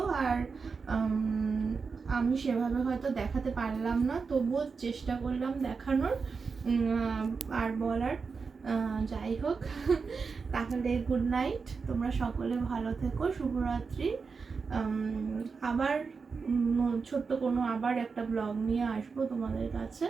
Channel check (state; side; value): quieter; left; 5.0 dB